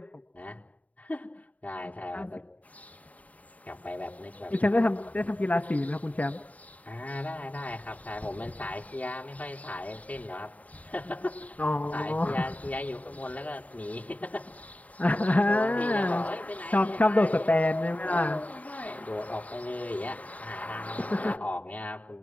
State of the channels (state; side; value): late; right; 0.071 ms